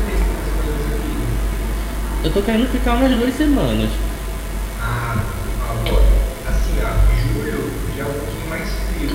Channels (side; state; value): both; identical; correlation 1.00